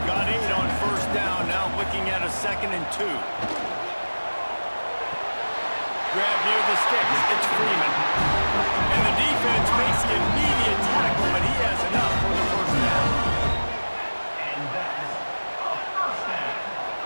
Got 8 on 1st down, now looking at a 2nd and 2. grab near the sticks. It's Freeman. And the defense makes the immediate tackle, but he has enough for the first down. And that is a first down.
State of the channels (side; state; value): both; inverted; correlation -1.00